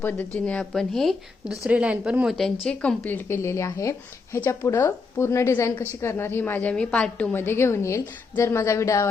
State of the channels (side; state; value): right; quieter; 4.4 dB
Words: आपण ही दुसरी लाईन पण मोत्यांची कंप्लीट केलेली आहे. ह्याच्या पुढं पूर्ण डिझाईन कशी करणार ही मी पार्ट 2 मध्ये घेऊन येईल. जर माझा व्हिडिओ